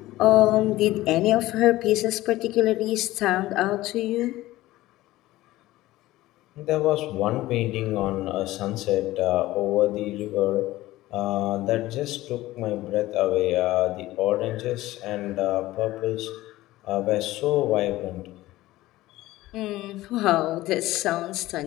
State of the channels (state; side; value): quieter; right; 16.9 dB